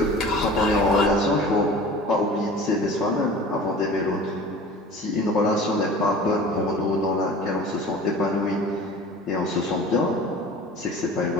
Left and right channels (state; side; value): normal; both; correlation 0.40